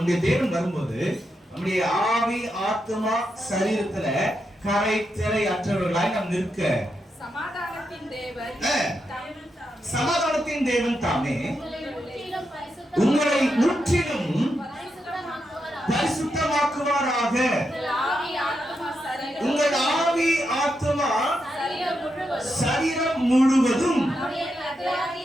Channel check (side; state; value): both; normal; correlation 0.85